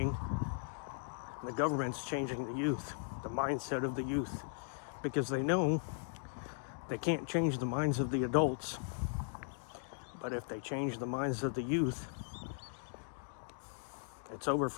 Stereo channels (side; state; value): right; silent; digital silence